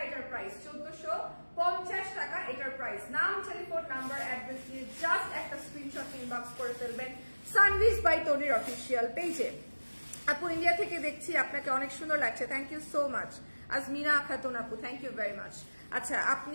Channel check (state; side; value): inverted; both; correlation -1.00